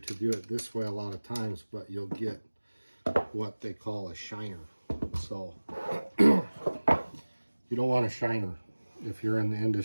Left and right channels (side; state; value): both; inverted; correlation -1.00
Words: do it this way a lot of times, but you'll get what they call a shiner. So you don't want a shiner. If you're in the